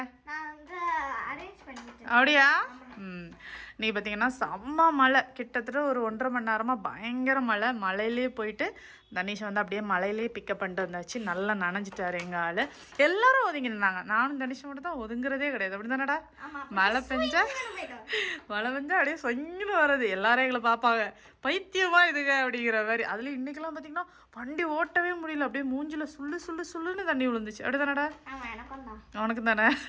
நான் வந்து அரேஞ்ச் பண்ணிட்டேன். அப்படியா? நீ பார்த்தீங்கன்னா செம்ம மழை, கிட்டத்தட்ட ஒரு 1.5 மணி நேரமாக பயங்கர மழை. மழையிலே போயிட்டு தனிஷை வந்து அப்படியே மழையிலே பிக்கப் பண்ணிட்டு வந்தாச்சு. நல்லா நனைஞ்சிட்டாரு எங்கள் ஆள். எல்லாரும் ஒதுங்கி நின்னாங்க. நானும் தனிஷை மட்டும் தான் ஒதுங்குறதே கிடையாது. அப்படி தானடா? மழை பெஞ்சா அப்படியே சொங்கின்னு வர்றது. எல்லாரும் எங்களை பார்ப்பாங்க, பைத்தியமா இதுங்க அப்படிங்கிற மாதிரி. அதுலேயும் இன்னைக்கெல்லாம் பார்த்தீங்கன்னா வண்டி ஓட்டவே முடியல. அப்படியே மூஞ்சில் சுள்ளுன்னு தண்ணி விழுந்துச்சு. அப்படி தானடா? உனக்கு தானே?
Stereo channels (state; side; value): identical; both; correlation 1.00